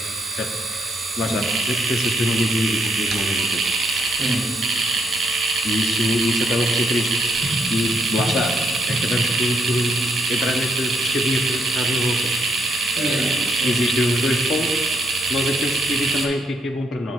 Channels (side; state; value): both; normal; correlation 0.75